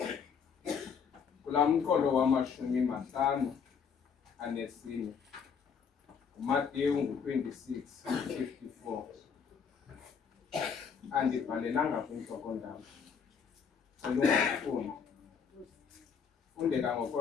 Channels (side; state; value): right; quieter; 6.5 dB